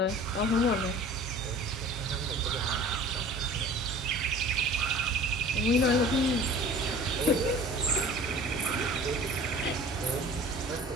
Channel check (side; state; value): both; normal; correlation 0.45